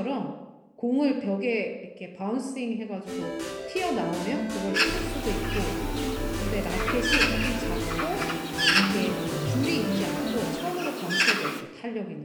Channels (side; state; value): both; identical; correlation 1.00